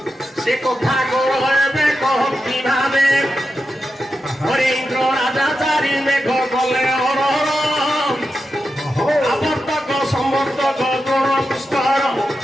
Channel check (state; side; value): normal; both; correlation 0.89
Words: ସେ କଥା କର ଏବେ କହନ୍ତି ଭାବେ ହରେ ଇନ୍ଦ୍ର ରାଜା ଚାରି ମେଘ କଲେ ହରହର ওহো ଆବର୍ତ୍ତକ ସମର୍ତ୍ତକ ଦ୍ରୋଣ ପୁଷ୍କର